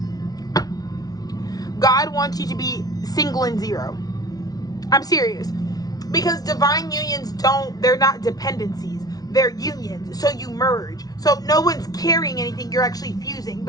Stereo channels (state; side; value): late; right; 0.18 ms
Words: God wants you to be single and zero. I'm serious. Because divine unions they're not dependencies. They're unions. So you merge. So no one's carrying anything. You're actually fusing.